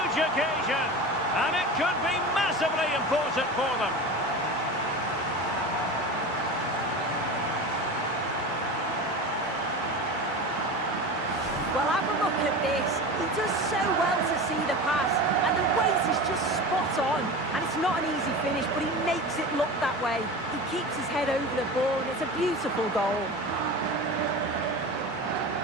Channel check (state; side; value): normal; both; correlation 0.30